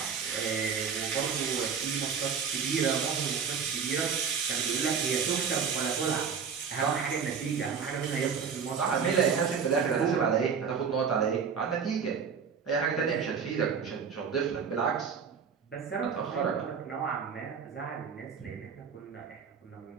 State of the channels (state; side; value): quieter; left; 6.4 dB